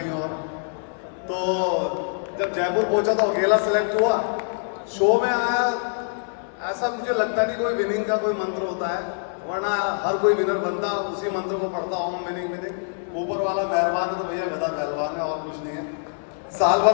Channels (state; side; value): silent; right; digital silence